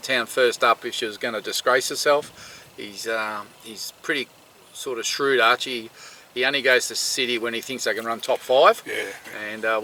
first up if she was going to disgrace herself. He's pretty sort of shrewd, Archie. He only goes to City when he thinks they can run top 5. Yeah. And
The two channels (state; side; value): identical; both; correlation 1.00